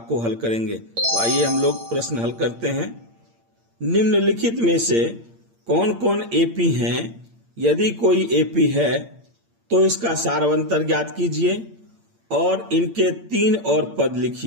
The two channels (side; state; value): left; late; 8.7 ms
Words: को हल करेंगे। तो आइए हम लोग प्रश्न हल करते हैं। निम्नलिखित में से कौन कौन एपी हैं? यदि कोई एपी है तो इसका सारवंतर ज्ञात कीजिए और इनके 3 और पद